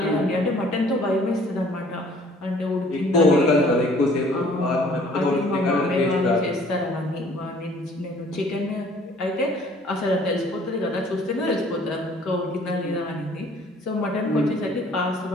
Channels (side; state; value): both; normal; correlation 0.56